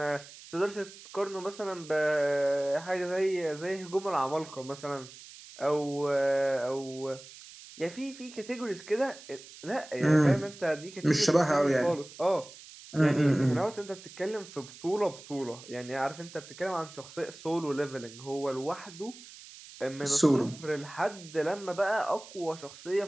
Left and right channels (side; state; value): right; noise; hiss, 18 dB below the sound